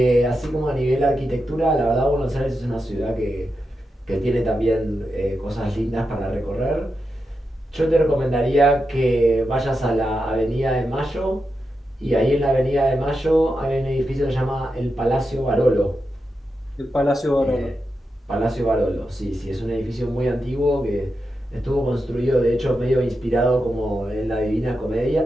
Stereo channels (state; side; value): normal; both; correlation 0.88